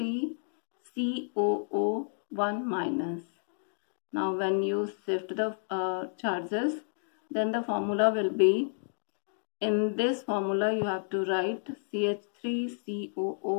minus. Now when you shift the charges, then the formula will be, in this formula you have to write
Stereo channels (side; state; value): right; silent; digital silence